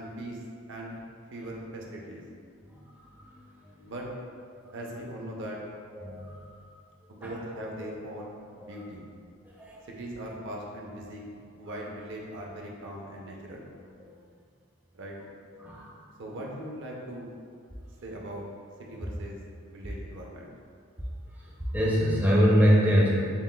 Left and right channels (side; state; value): both; normal; correlation 0.79